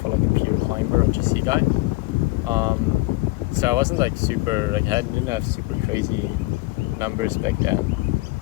like a pure climber or GC guy. So I wasn't like super, like I didn't have super crazy numbers back then.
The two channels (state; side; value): quieter; right; 21.1 dB